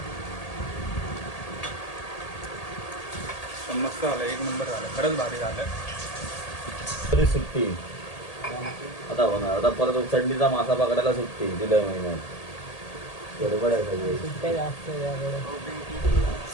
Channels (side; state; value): right; late; 1.8 ms